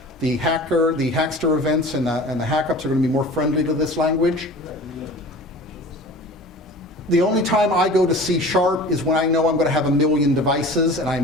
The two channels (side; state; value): both; normal; correlation 0.40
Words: The Hackster events and the hackups are going to be more friendly to this language. The only time I go to C# is when I know I'm going to have 1 million devices and I